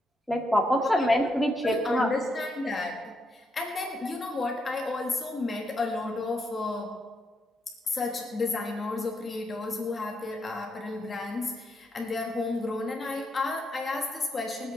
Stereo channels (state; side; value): normal; both; correlation 0.79